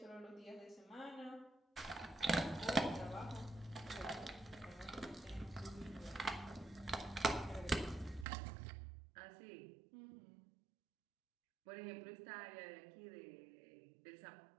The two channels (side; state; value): left; drops out; at 8.2 s